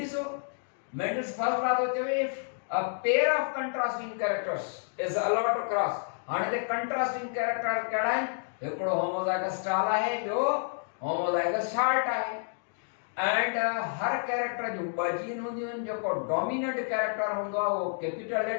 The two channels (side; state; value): right; silent; digital silence